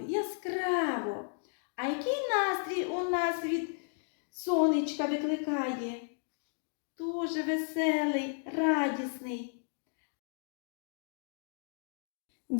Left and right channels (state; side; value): silent; right; digital silence